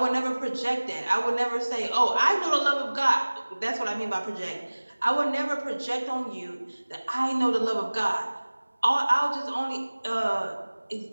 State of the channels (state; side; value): inverted; both; correlation -1.00